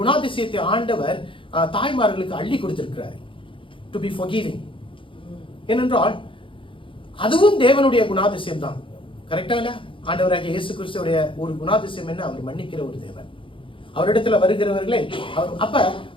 ஆண்டவர் தாய்மார்களுக்கு அள்ளி கொடுத்திருக்கிறார். To be forgiving. ஏனென்றால் அதுவும் தேவனுடைய குணாதிசயம் தான். கரெக்டா இல்ல? ஆண்டவராகிய இயேசு கிறிஸ்துவுடைய ஒரு குணாதிசயம் என்ன? அவர் மன்னிக்கிற ஒரு தேவன். அவரிடத்துல வருகிறவர்களை அப்ப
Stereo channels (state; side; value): late; right; 0.25 ms